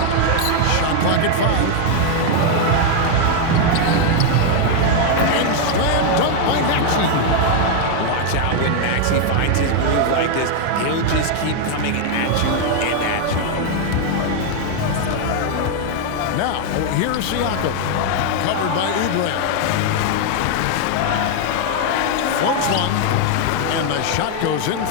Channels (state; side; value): different; both; correlation 0.00